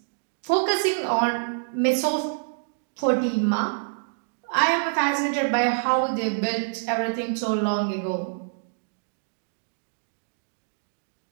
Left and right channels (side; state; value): left; silent; digital silence